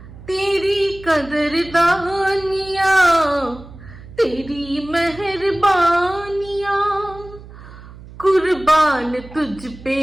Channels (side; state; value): right; noise; hum, 17 dB below the sound